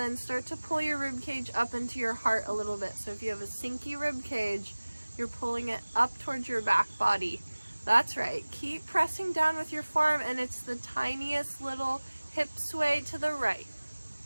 start to pull your rib cage up into your heart a little bit. So if you have a sinky rib cage, you're pulling it up towards your back body. That's right. Keep pressing down with your forearm, and it's the tiniest little hip sway to the right.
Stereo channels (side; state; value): both; inverted; correlation -1.00